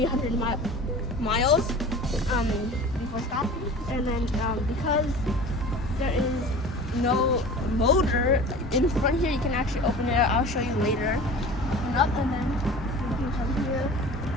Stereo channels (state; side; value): normal; both; correlation 0.39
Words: miles before stopping. And then because there is no motor in front here, you can actually open it. I'll show you later. Open up, and then you can come here.